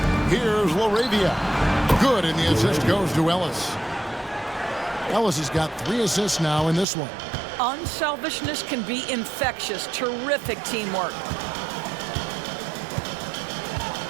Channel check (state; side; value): drops out; left; at 6.9 s